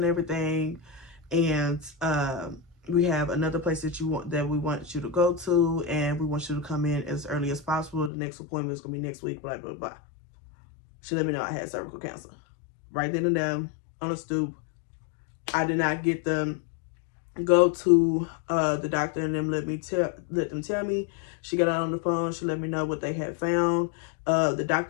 everything, and we have another place that we want you to go to, and we want you to come in as early as possible. The next appointment is gonna be next week, blah blah blah. She let me know I had cervical cancer right then and there on a stoop. I did not get them go to the doctor and them let them tell me. She got on the phone. She let me know what they had found. The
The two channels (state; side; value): drops out; right; at 8.1 s